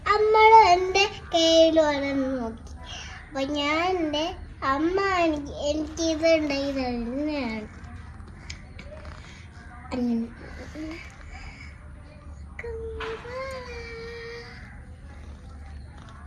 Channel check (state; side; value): identical; both; correlation 1.00